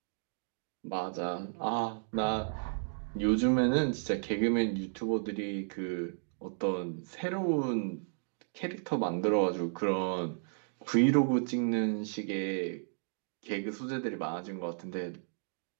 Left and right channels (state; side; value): silent; left; digital silence